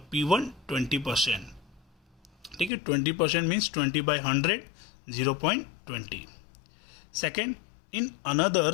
P1 20%। ठीक है, 20% means 20/100 0.20। Second, in another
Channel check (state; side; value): drops out; right; at 2.7 s